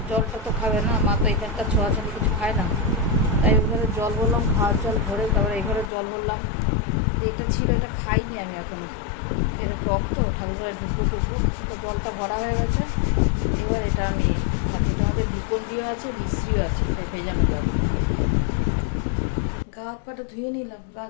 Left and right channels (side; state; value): right; drops out; at 5.9 s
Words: জলটা তো খাবে না, মা তো এখানকার ছোঁয়াছানি কিছু খায় না, তাই ওই ঘরে জল ভরলাম, খাওয়ার জল ভরে তারপরে এই ঘরে জল ভরলাম। এটা ছিল, এটা খাইনি আমি এখনো, এটা টক তো, ঠাকুর ঘরে ঢুকবো তো জলটা ভরা হয়ে গেছে। এবার এটা আমি খাচ্ছি। তোমাদের গ্লুকন-ডিও আছে, মিশ্রিও আছে, এটা ভেজানো জল। গা হাত পাটা ধুয়ে নিলাম, গা